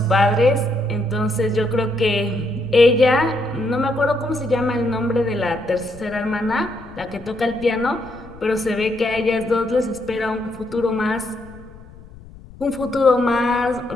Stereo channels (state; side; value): noise; left; rumble, 20 dB below the sound